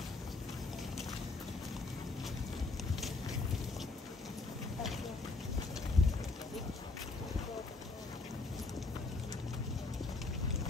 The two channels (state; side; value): quieter; right; 3.7 dB